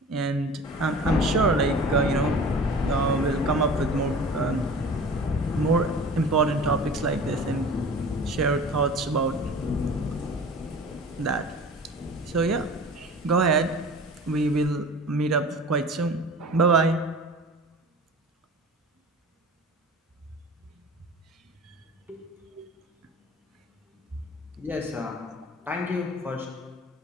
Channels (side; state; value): both; normal; correlation 0.39